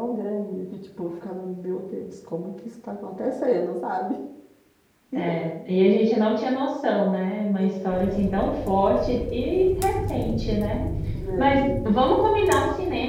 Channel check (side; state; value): both; identical; correlation 1.00